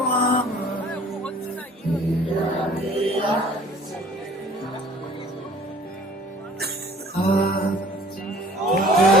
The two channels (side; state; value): both; normal; correlation 0.50